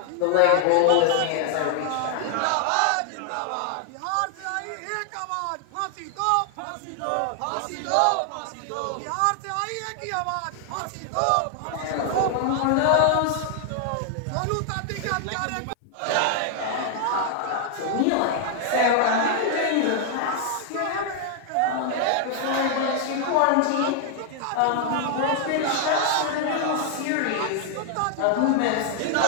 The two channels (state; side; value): different; both; correlation 0.00